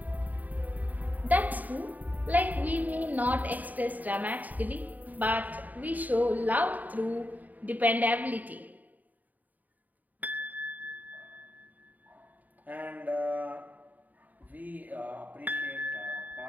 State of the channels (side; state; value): left; late; 0.080 ms